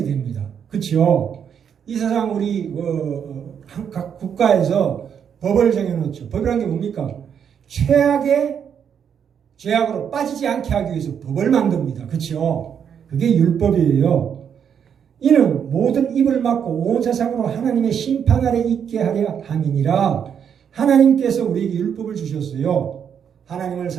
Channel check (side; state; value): left; quieter; 7.9 dB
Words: 됩니다. 그렇죠? 이 세상 우리 각 국가에서 법을 정해놓죠. 법이라는 게 뭡니까? 최악의 죄악으로 빠지지 않게 하기 위해서 법을 만듭니다. 그렇죠? 그게 율법이에요. 이는 모든 입을 막고 온 세상으로 하나님의 심판 아래 있게 하려 함이니라. 하나님께서 우리에게 율법을 주셨어요. 하나님을